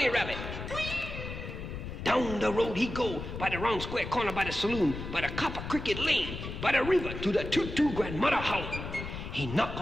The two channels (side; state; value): left; noise; rumble, 8 dB below the sound